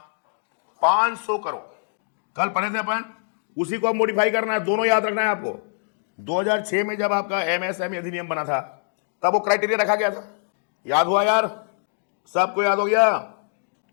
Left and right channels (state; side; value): silent; right; digital silence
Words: 500 करोड़। कल पढ़े थे अपन, उसी को अब मॉडिफाई करना है। दोनों याद रखना है आपको। 2006 में जब आपका MSME अधिनियम बना था तब वो क्राइटेरिया रखा गया था। याद हुआ यार? सबको याद हो गया?